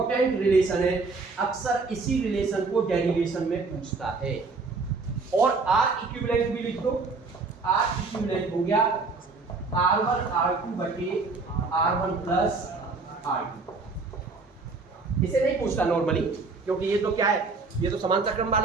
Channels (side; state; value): left; quieter; 4.1 dB